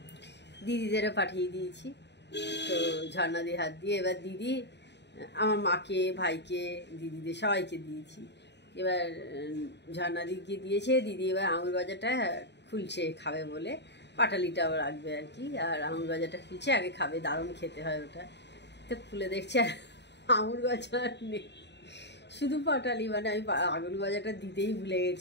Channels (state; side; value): late; right; 0.50 ms